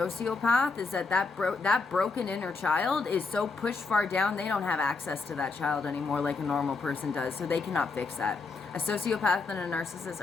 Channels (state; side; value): quieter; right; 4.2 dB